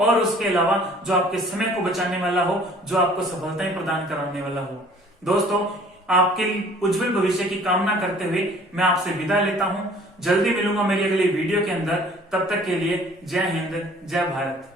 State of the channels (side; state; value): both; normal; correlation 0.53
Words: उसके अलावा जो आपके समय को बचाने वाला हो, जो आपको सफलताएं प्रदान कराने वाला हो। दोस्तों, आपके उज्जवल भविष्य की कामना करते हुए मैं आपसे विदा लेता हूं। जल्दी मिलूंगा मेरी अगली वीडियो के अंदर। तब तक के लिए जय हिंद, जय भारत।